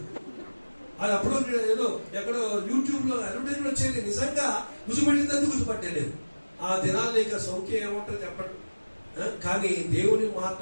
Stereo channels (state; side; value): inverted; both; correlation -1.00